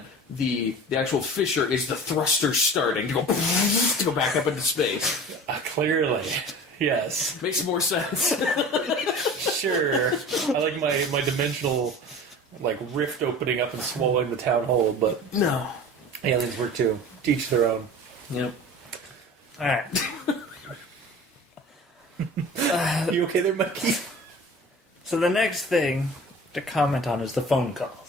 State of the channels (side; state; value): both; normal; correlation 0.39